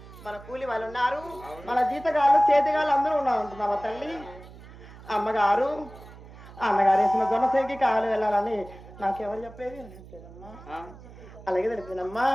మన కూలి వాళ్ళు ఉన్నారు, మన జీతగాళ్ళు చేతిగాళ్ళు అందరూ ఉన్నారు అంటున్నావా తల్లి? అమ్మగారు అన్నగారేసిన జనసేనకి కావాలి వెళ్ళాలని నాకెవరు చెప్పేది తెలియదమ్మా. ఆ, అలాగే తెలిసిందమ్మా.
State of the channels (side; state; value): right; noise; hum, 18 dB below the sound